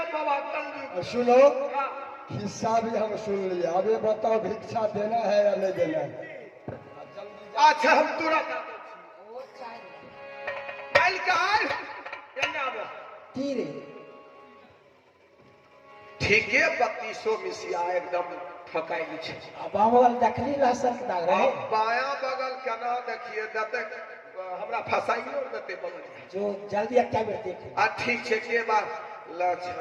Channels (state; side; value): identical; both; correlation 1.00